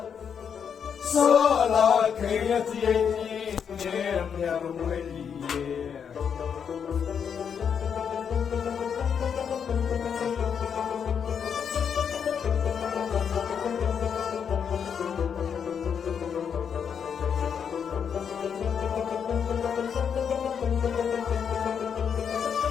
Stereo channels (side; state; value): right; quieter; 7.3 dB